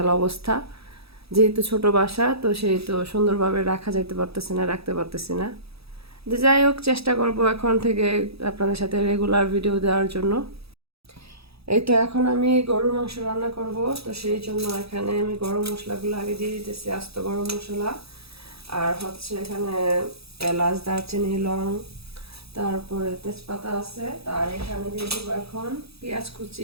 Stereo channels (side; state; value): left; late; 0.77 ms